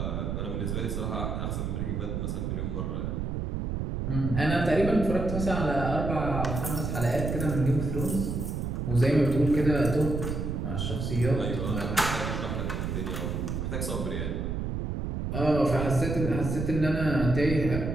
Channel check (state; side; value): noise; right; rumble, 2 dB below the sound